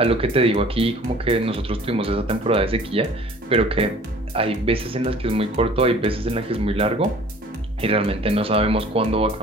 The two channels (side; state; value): both; normal; correlation 0.49